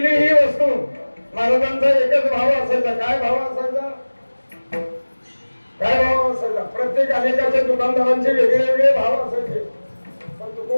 ही वस्तू? महाराजांचा एकच भाव असायचा. काय भाव असायचा? काय भाव असायचा? प्रत्येक अनेकाच्या दुकानदारांचे वेगळे वेगळे भाव असायचे, पण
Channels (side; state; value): both; inverted; correlation -1.00